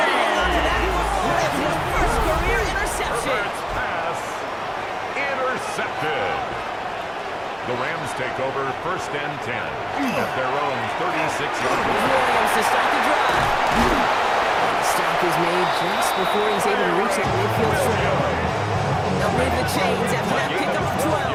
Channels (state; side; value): identical; both; correlation 1.00